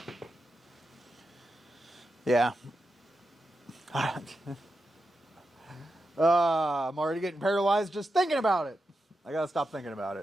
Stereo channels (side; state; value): both; normal; correlation 0.88